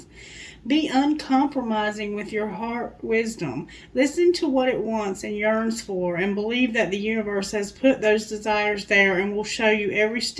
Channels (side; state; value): both; identical; correlation 1.00